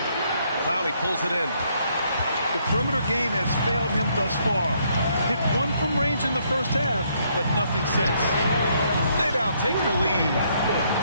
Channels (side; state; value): both; inverted; correlation -0.71